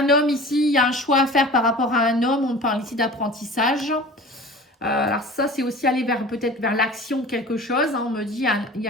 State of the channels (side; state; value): both; normal; correlation 0.41